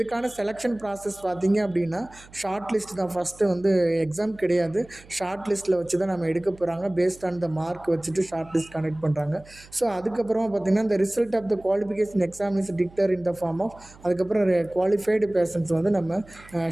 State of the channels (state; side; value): noise; right; hum, 23 dB below the sound